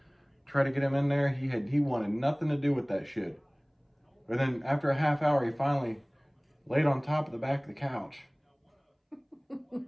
Try to get him in there. He wanted nothing to do with that shit. But then after a half hour, he finally laid on top of the back of the couch.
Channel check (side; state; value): both; identical; correlation 1.00